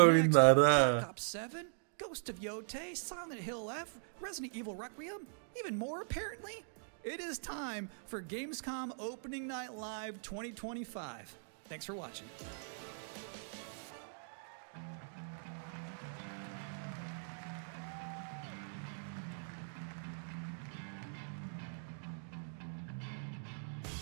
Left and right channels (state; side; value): silent; left; digital silence